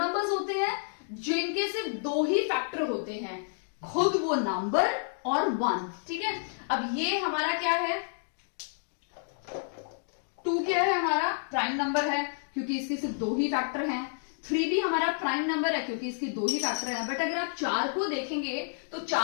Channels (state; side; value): silent; right; digital silence